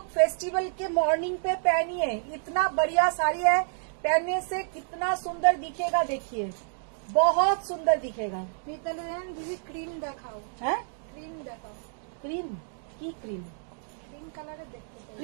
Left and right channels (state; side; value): silent; left; digital silence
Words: फेस्टिवल के मॉर्निंग पे पहनिए, इतना बढ़िया साड़ी है, पहनने से कितना सुंदर दिखेगा, देखिए बहुत सुंदर दिखेगा। मिताली मैम दीदी क्रीम देखाओ, है क्रीम देखाओ, ক্রিম কি ক্রিম? ক্রিম কালারে দেখতে চাই।